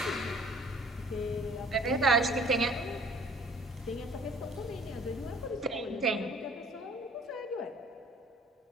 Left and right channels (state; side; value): normal; both; correlation 0.52